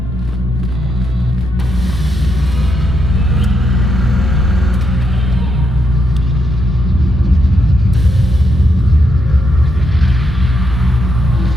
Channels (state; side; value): normal; both; correlation 0.80